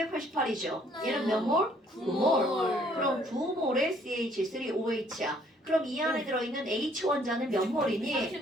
얘는 몇 몰? 9몰. 그럼 9몰의 CH3OH야. 그럼 이 안에 들어있는 H 원자는 몇 몰이니?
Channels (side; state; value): both; normal; correlation 0.63